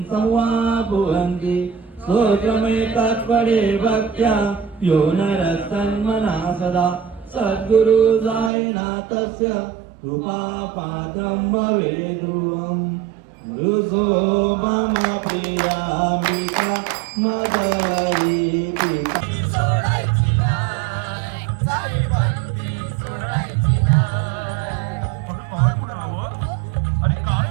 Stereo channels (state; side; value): drops out; left; at 8.5 s